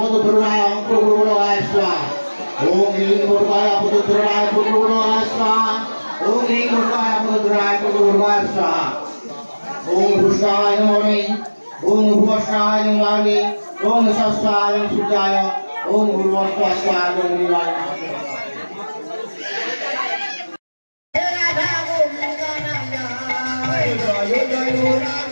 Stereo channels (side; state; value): both; inverted; correlation -1.00